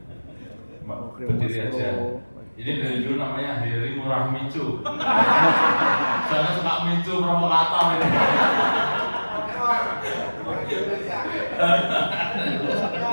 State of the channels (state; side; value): inverted; both; correlation -1.00